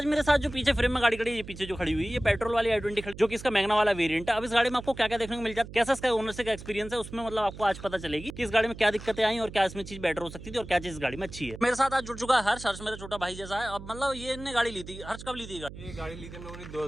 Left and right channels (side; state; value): right; noise; hum, 13 dB below the sound